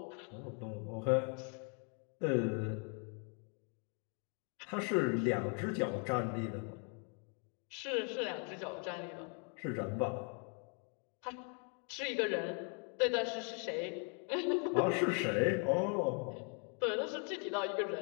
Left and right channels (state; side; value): quieter; right; 39.3 dB